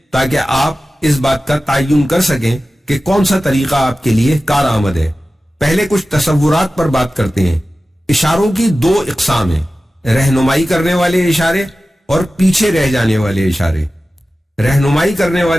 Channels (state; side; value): normal; both; correlation 0.95